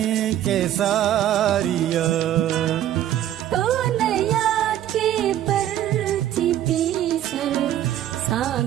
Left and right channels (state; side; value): quieter; left; 11.9 dB